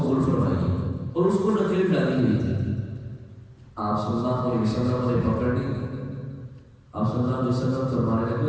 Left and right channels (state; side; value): identical; both; correlation 1.00